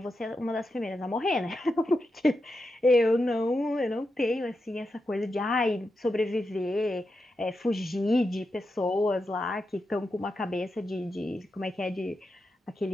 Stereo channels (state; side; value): normal; both; correlation 0.88